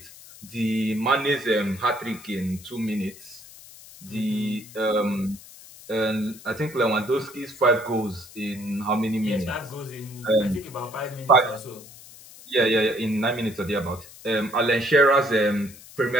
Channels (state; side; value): noise; left; hiss, 19 dB below the sound